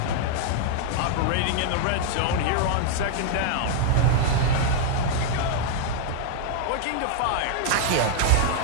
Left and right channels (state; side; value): different; both; correlation -0.01